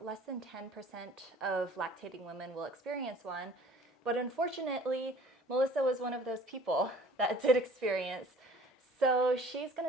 less than 10% of lactating women will experience one, but unfortunately, Melissa was one of those people that did experience. So she's going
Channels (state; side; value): normal; both; correlation 0.50